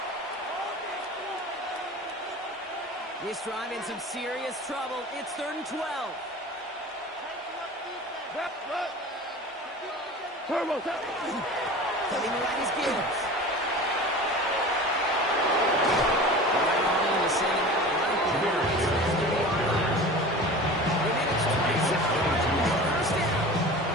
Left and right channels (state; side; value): normal; both; correlation 0.36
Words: This drive in some serious trouble. It's 3rd and 12. Turbo, Coming to right is Gibbs.